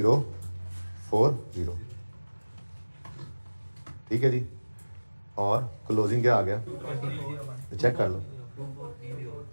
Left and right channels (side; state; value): both; inverted; correlation -1.00